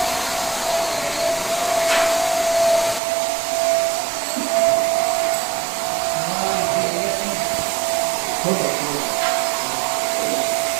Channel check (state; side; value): drops out; left; at 3.0 s